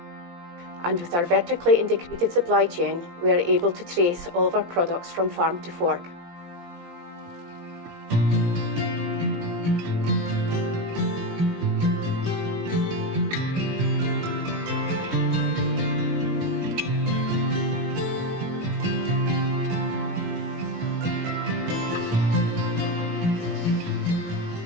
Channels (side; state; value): left; late; 17 ms